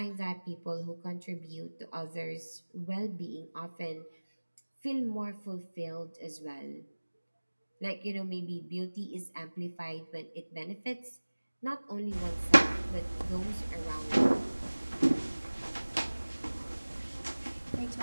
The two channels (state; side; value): inverted; both; correlation -1.00